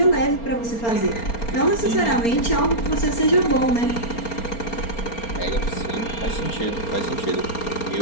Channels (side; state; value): right; late; 4.3 ms